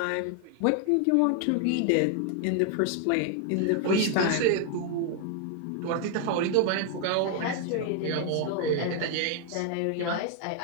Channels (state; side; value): different; both; correlation 0.00